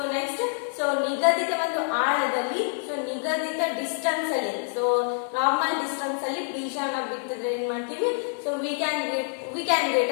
ನೆಕ್ಸ್ಟ್ ಸೊ ನಿಗದಿತ ಒಂದು ಆಳದಲ್ಲಿ ಸೊ ನಿಗದಿತ ಡಿಸ್ಟೆನ್ಸ್ ಅಲ್ಲಿ ಸೊ ನಾರ್ಮಲ್ ಡಿಸ್ಟೆನ್ಸ್ ಅಲ್ಲಿ ಬೀಜವನ್ನ ಬಿತ್ತಿದ್ರೆ ಏನ್ ಮಾಡ್ತೀವಿ so we can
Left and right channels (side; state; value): right; silent; 57 dB below the other